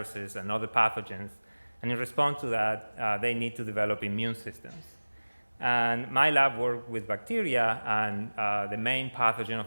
and other pathogens, and in response to that, they need to develop immune systems. And my lab worked with bacteria, and the main pathogen of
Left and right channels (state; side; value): inverted; both; correlation -1.00